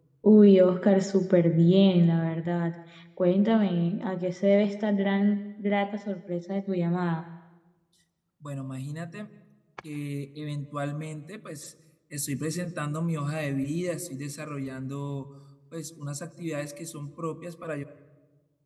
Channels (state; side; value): identical; both; correlation 1.00